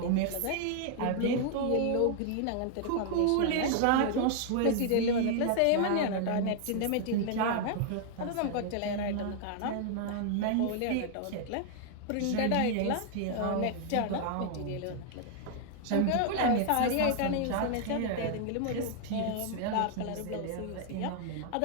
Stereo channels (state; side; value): different; both; correlation 0.00